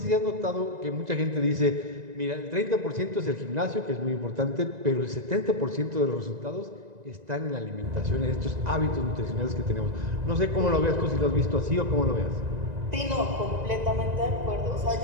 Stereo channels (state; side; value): late; left; 1.9 ms